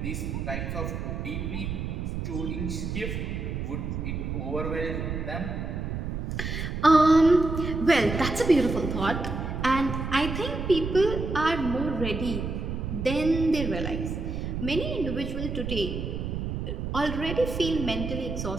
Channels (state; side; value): noise; right; rumble, 4 dB below the sound